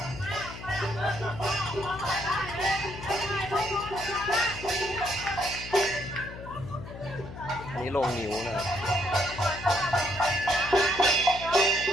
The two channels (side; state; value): left; noise; hum, 12 dB below the sound